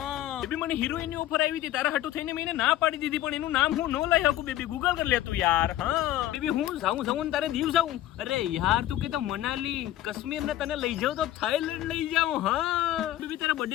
બેબી મને હિરોઈન ની ઓફર આવી હતી, તારા હાટુ થઈને મેં ના પાડી દીધી, પણ એનું નામ હું ન લઈ શકું. બેબી ગૂગલ કરી લેતું યાર. હા બેબી હું જાઉં તારે દીવ જાઉં. અરે યાર તું કે તો મનાલી કાશ્મીર ને તને લઈ જાઉં તો થાઈલેન્ડ લઈ જાઉં. હા બેબી તારા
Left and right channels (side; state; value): right; quieter; 13.6 dB